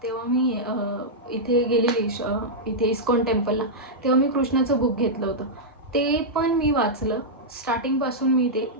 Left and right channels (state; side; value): normal; both; correlation -0.08